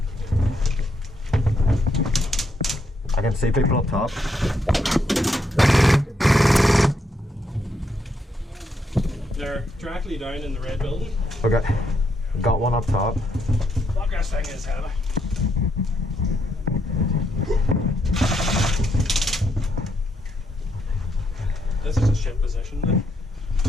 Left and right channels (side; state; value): both; normal; correlation 0.76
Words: I can see people up top. They're directly down in the red building. Okay. Got one up top. Fuck, this thing is heavy. This is a shit position then.